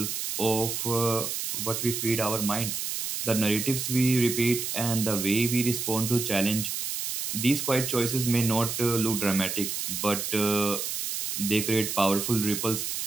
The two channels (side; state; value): right; noise; hiss, 3 dB below the sound